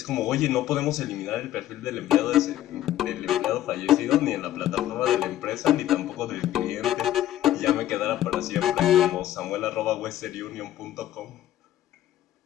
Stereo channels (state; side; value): quieter; right; 13.0 dB